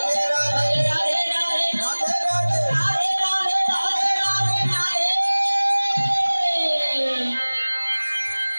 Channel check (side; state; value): both; inverted; correlation -1.00